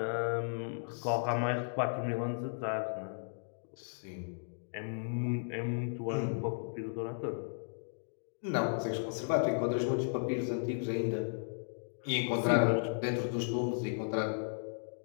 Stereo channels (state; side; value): silent; right; digital silence